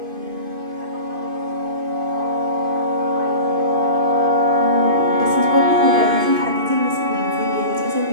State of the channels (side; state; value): left; late; 2.5 ms